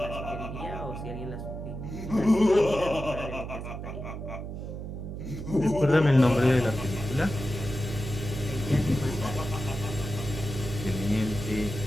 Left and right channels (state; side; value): noise; right; hum, 7 dB below the sound